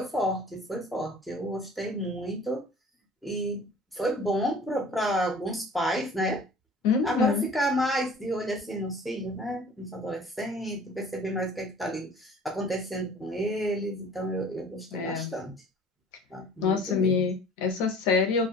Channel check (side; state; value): both; normal; correlation 0.47